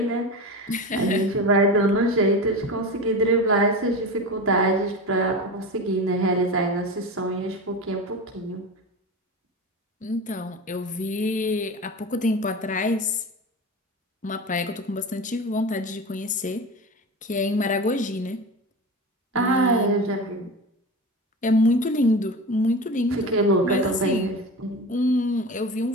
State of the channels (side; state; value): both; normal; correlation 0.27